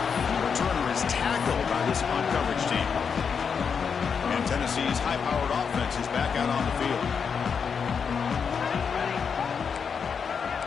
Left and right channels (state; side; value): quieter; right; 6.3 dB